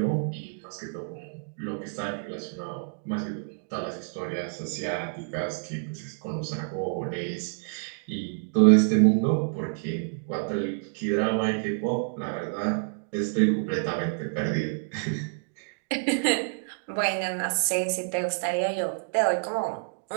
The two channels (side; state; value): left; silent; digital silence